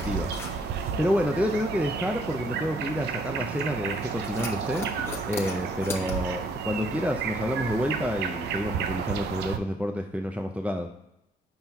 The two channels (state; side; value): normal; both; correlation 0.67